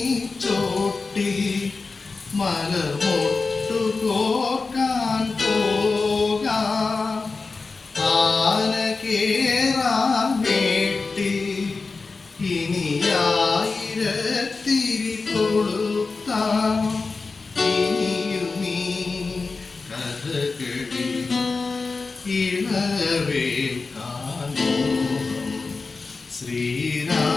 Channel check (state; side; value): quieter; right; 4.1 dB